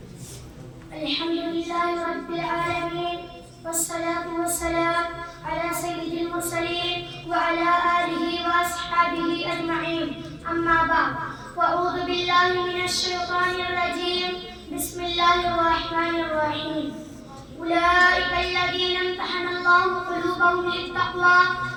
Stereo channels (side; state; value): both; identical; correlation 1.00